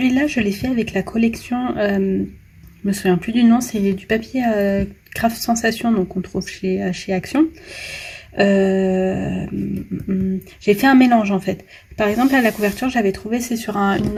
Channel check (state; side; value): identical; both; correlation 1.00